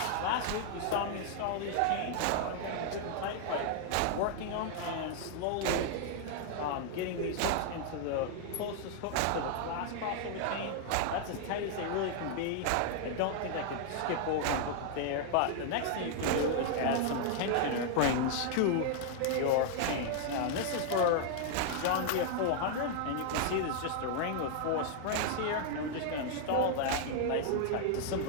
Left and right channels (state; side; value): different; both; correlation -0.01